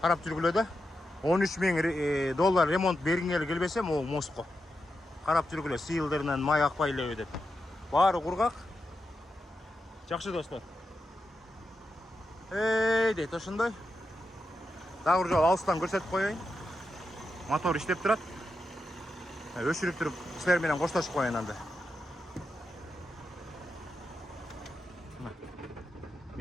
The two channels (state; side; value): normal; both; correlation 0.87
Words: жүргүлө да. $13,000 ремонт бергиңер келбесе, могу мостко карап жүргүлө, сыйылдырынан май акпай элеби деп. Баары кургак. Жакшы достор. Дейт ошондой. Дагы бир жолу алыстан көрсөтүп коеюн. Мотор иштеп турат. Өчүрүп туруп силер менен коштошуп коеюн анда.